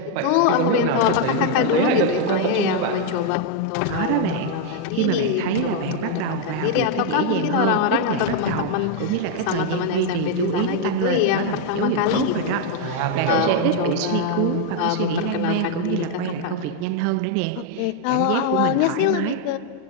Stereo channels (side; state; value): both; different; correlation 0.01